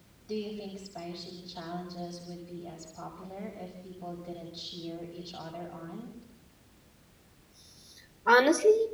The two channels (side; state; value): both; identical; correlation 1.00